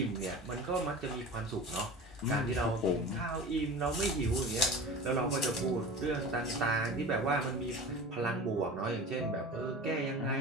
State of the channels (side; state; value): both; normal; correlation 0.34